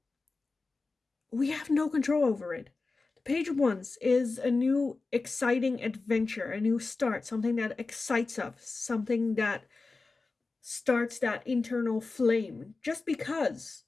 We have no control over it. The Page of Wands is a new exciting adventure, a new start, something that excites us, something that starts that internal flame. Just because.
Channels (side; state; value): right; quieter; 3.8 dB